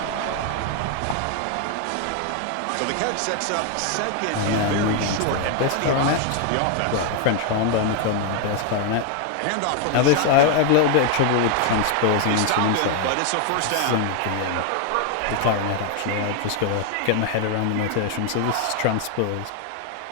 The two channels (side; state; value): both; different; correlation 0.00